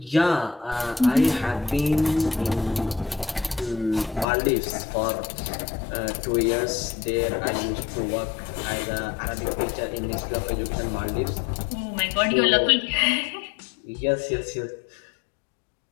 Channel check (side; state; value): right; drops out; at 4.2 s